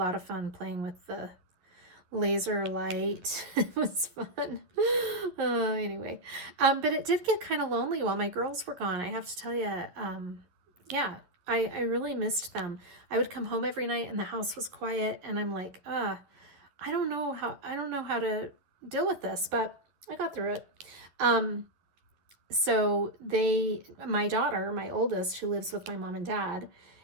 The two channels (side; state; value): left; late; 11 ms